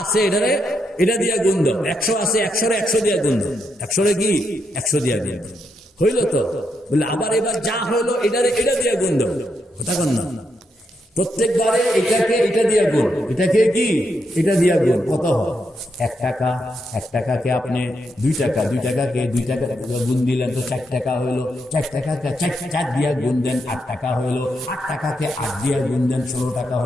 আছে এটারে এটা দিয়া গুণ দাও। 100 আছে 100-রে 100 দিয়া গুণ দাও, 100-রে কি 100 দিয়া গুণ দাও। হইল তো বলে আবার এবার যা হইলো এটারে এটা দিয়া গুণ দাও। কথা কোন না, প্রত্যেকবারে এটাকে এটা দিয়া গুণ, এটাকে কি এটা দিয়া গুণ। কত হয়? 1 টাকা, 1 টাকাকে আপনি 2 টাকা, 2 টাকাকে 2 টাকা গুণ দিলেন তো 4 টাকা হইলো। 4 টাকাকে 4 দিয়া গুণ দেন 8 টাকা হইলো। 8 টাকাকে 8 দিয়া গুণ দেন 16 টাকা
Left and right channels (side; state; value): both; normal; correlation 0.80